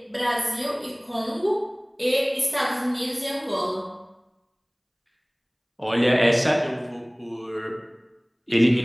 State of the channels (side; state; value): both; identical; correlation 1.00